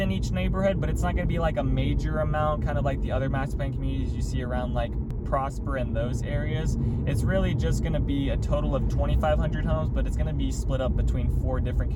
each neighborhood, but it's not gonna be like a major amount, kind of like the other master plan communities you see around like Prosper in those areas. It's really just going to be a total of 2,500 homes, but it's going to be split up between 4 different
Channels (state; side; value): identical; both; correlation 1.00